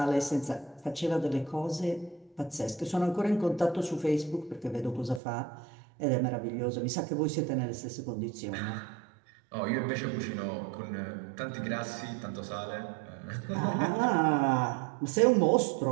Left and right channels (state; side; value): drops out; left; at 5.2 s